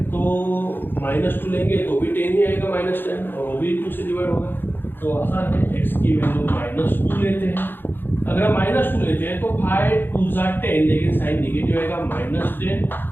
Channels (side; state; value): right; late; 0.098 ms